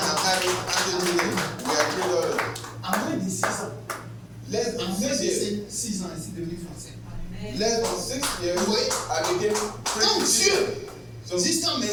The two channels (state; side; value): identical; both; correlation 1.00